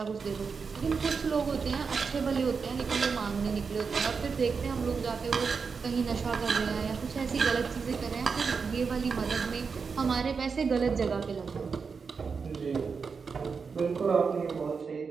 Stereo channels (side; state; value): left; quieter; 5.4 dB